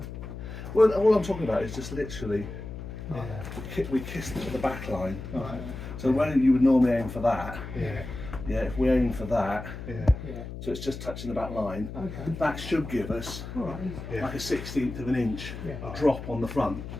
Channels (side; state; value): left; noise; hum, 9 dB below the sound